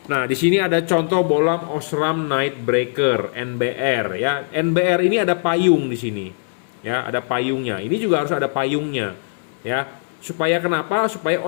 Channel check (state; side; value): silent; right; 65 dB below the other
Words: Nah, di sini ada contoh bohlam Osram Night Breaker NBR ya. NBR ini ada payung di sini. Ya, ada payungnya. Ini juga harus ada payungnya ya. Supaya kenapa? Supaya